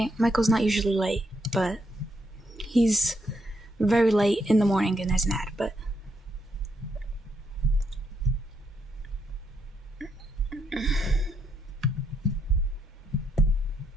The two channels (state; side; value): normal; both; correlation 0.77